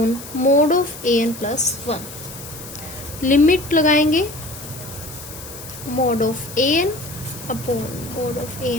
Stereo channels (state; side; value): noise; left; hiss, 13 dB below the sound